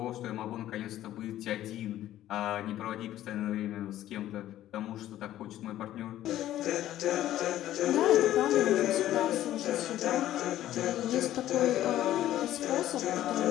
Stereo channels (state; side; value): quieter; right; 13.2 dB